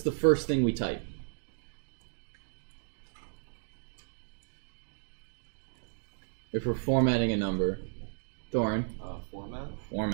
the first thing we type? If we're formatting a number. Thorin?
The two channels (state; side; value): silent; left; digital silence